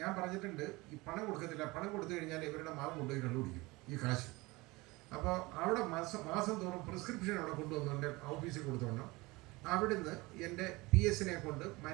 ഞാൻ പറഞ്ഞിട്ടുണ്ട് ഈ പണം കൊടുക്കത്തില്ല, പണം കൊടുത്തു കഴിഞ്ഞാൽ ഇവരുടെ മാവ് കൊണ്ടുപോയി കണ്ടുപിടിക്കും ഈ കാശ്. അപ്പോൾ അവിടെ മാസം തോറും പ്രിസ്ക്രിപ്ഷൻ അവിടെ കൊണ്ടുവന്നു എൻ്റെ ഓഫീസിൽ കൊടുത്തോണം. അവിടുന്ന് എൻ്റെ PS കൊണ്ട്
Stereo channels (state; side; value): quieter; left; 22.7 dB